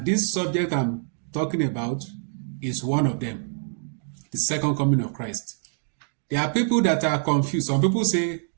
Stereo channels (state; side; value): silent; left; 61 dB below the other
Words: this subject I'm talking about is one of them: the second coming of Christ. There are people that are confused. Some people say